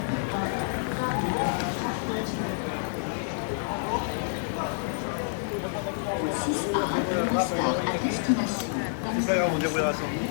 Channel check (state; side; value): silent; right; digital silence